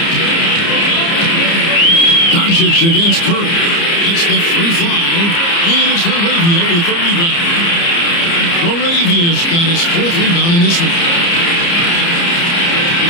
Doncic against Curry. It's the 3 fly. And it's Laravia with the rebound. Laravia's got his 4th rebound in this one.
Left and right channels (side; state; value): right; late; 29 ms